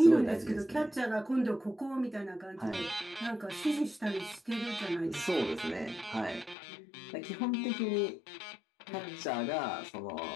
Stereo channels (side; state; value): right; drops out; at 6.6 s